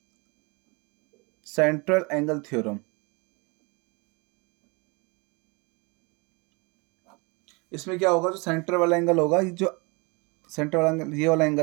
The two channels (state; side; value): quieter; left; 28.8 dB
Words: सेंट्रल एंगल थ्योरम। इसमें क्या होगा? जो सेंटर वाला एंगल होगा, ये जो सेंटर वाला एंगल, ये वाला